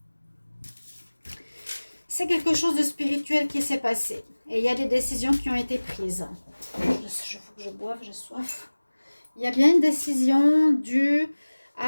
C'est quelque chose de spirituel qui s'est passé. Et il y a des décisions qui ont été prises. Il faut que je boive, j'ai soif. Il y a bien une décision due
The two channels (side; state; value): both; inverted; correlation -1.00